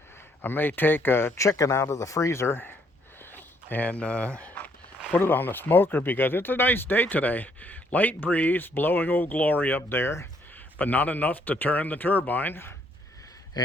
I may take a chicken out of the freezer and put it on the smoker because it's a nice day today. Light breeze blowing Old Glory up there, but not enough to turn the turbine.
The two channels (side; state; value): both; normal; correlation 0.69